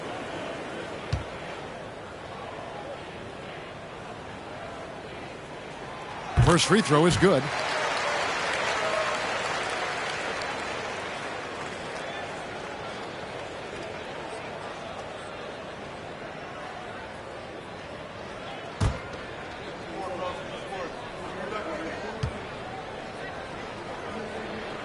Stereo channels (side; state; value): both; identical; correlation 1.00